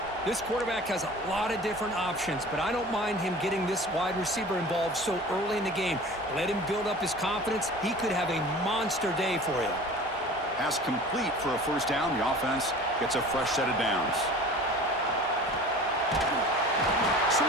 This quarterback has a lot of different options, but I don't mind him getting this wide receiver involved so early in the game. Let him build up his confidence. He could have a monster day for you. Pass complete for a first down. The offense gets a fresh set of downs.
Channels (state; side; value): normal; both; correlation 0.41